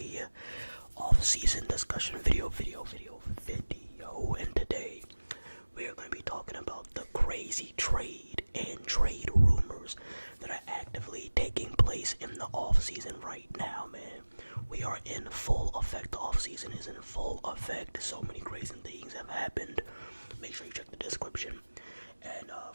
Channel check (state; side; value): inverted; both; correlation -1.00